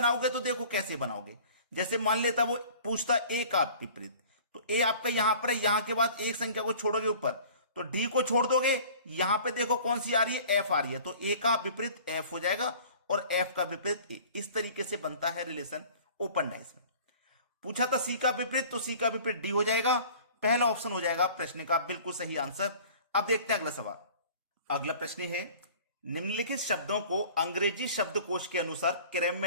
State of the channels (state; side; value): inverted; both; correlation -0.47